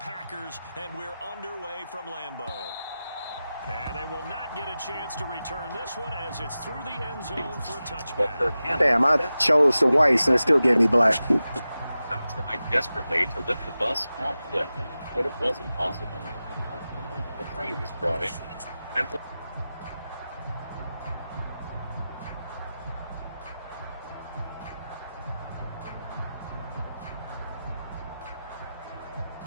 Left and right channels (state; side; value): inverted; both; correlation -0.94